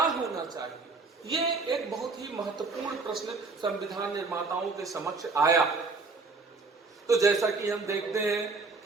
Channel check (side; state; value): left; quieter; 4.0 dB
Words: चाहिए, ये एक बहुत ही महत्वपूर्ण प्रश्न संविधान निर्माताओं के समक्ष आया। तो जैसा कि हम देखते हैं